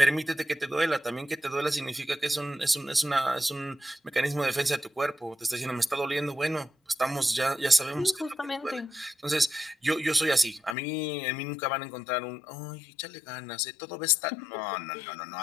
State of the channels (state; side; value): drops out; right; at 10.8 s